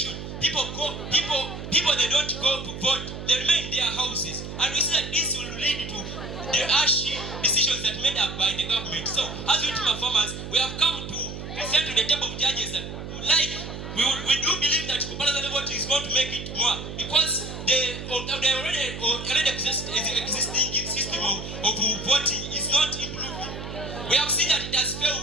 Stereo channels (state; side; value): noise; right; hum, 9 dB below the sound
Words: people they don't go to vote, they remain in their houses. And we see that this will lead to the harsh decisions that made up by the government. So, as we team of farmers, we have come to present to the table of judges that we do believe that compulsory voting is going to make it more because the already existing system of voting is not improving. We have seen that it has